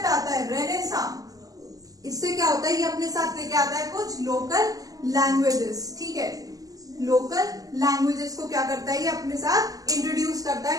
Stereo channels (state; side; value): late; left; 0.17 ms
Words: आता है रेनेसां, इससे क्या होता है, ये अपने साथ लेके आता है कुछ लोकल लैंग्वेजेस, ठीक है, लोकल लैंग्वेजेस को क्या करता है, ये अपने साथ इंट्रोड्यूस करता है,